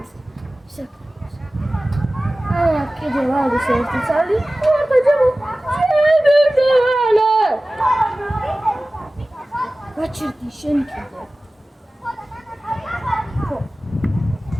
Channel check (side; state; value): both; normal; correlation 0.97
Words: კიდე ვარის ერთი წალი. გაჩერდი შენ კიდე.